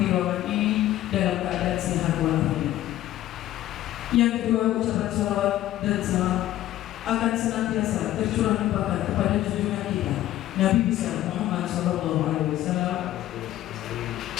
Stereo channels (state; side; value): quieter; right; 13.9 dB